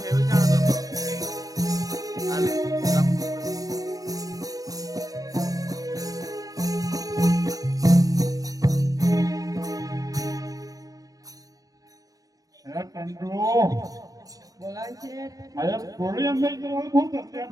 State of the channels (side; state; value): left; late; 0.18 ms